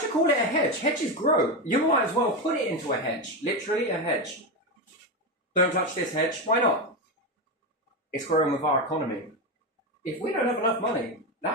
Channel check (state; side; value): normal; both; correlation 0.12